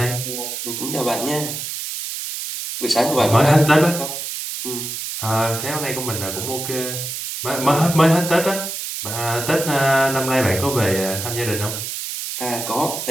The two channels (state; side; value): noise; right; hiss, 6 dB below the sound